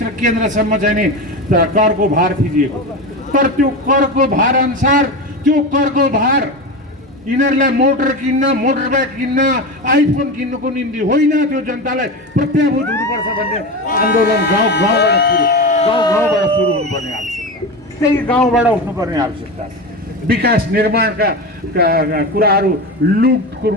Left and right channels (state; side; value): normal; both; correlation 0.22